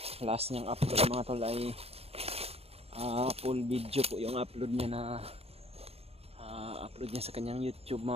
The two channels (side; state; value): left; late; 0.29 ms